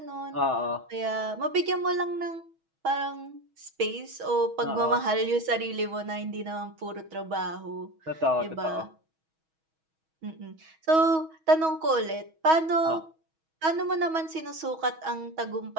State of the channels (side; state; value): left; late; 6.2 ms